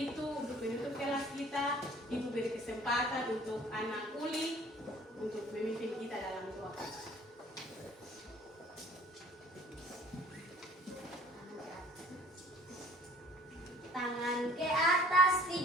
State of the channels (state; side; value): normal; both; correlation 0.52